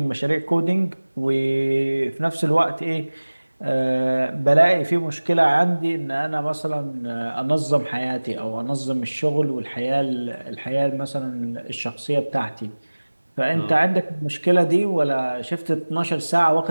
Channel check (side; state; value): both; inverted; correlation -1.00